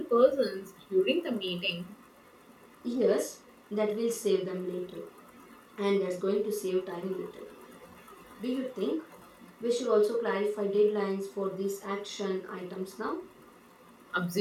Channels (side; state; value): both; identical; correlation 1.00